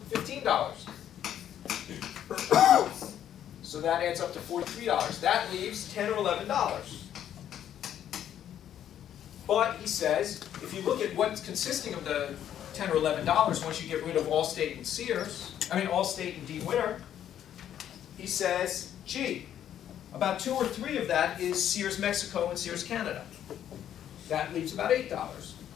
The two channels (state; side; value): quieter; right; 10.4 dB